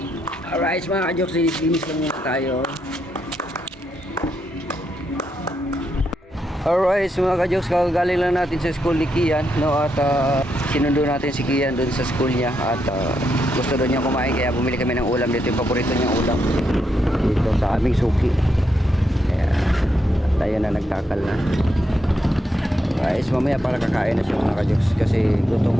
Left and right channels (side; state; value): both; normal; correlation 0.81